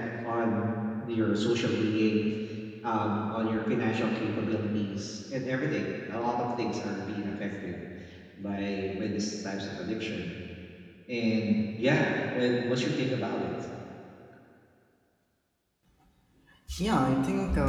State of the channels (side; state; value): both; identical; correlation 1.00